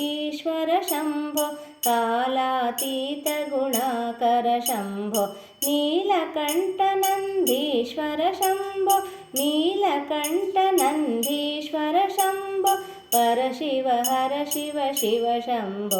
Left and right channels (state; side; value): identical; both; correlation 1.00